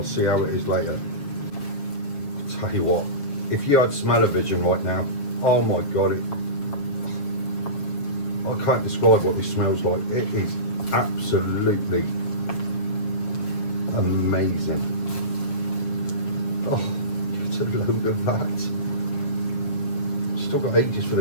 see how it is later. Tell you what, if you had smell-o-vision right now, oh my god, I can't describe what this smells like. It is absolutely amazing. Oh, it's a load of that. Still got ages for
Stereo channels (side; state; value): right; late; 7.4 ms